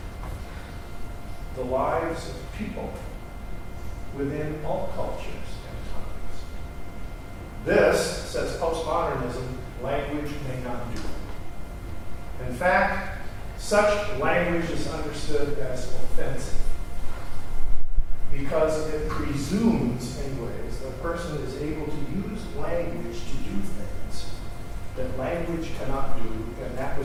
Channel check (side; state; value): both; identical; correlation 1.00